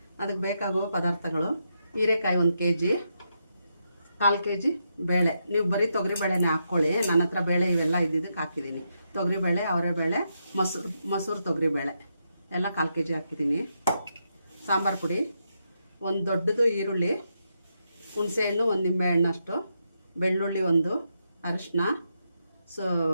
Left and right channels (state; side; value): inverted; both; correlation -0.82